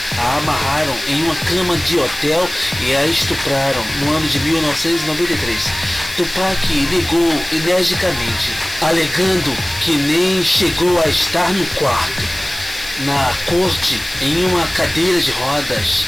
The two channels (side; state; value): left; noise; hiss, 14 dB below the sound